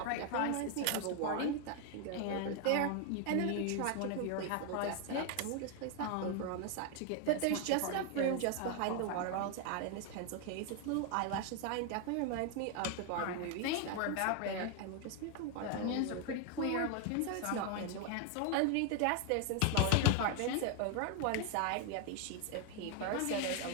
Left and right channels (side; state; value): both; different; correlation 0.00